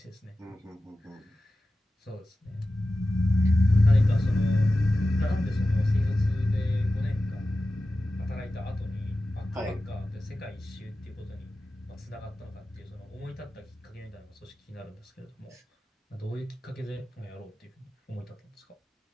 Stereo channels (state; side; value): normal; both; correlation 0.94